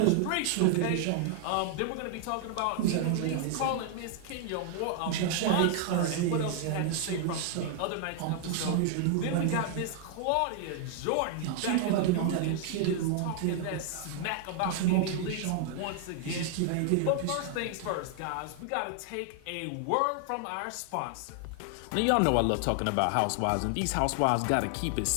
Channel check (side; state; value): both; different; correlation 0.00